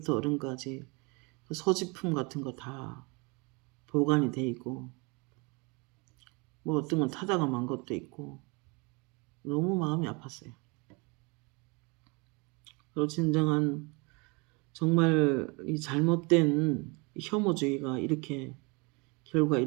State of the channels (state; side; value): quieter; left; 29.4 dB